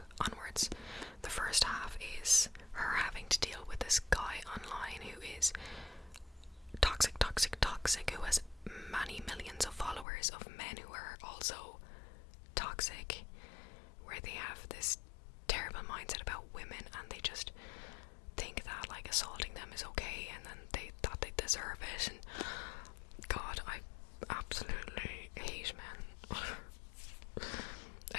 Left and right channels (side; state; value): right; drops out; at 10.1 s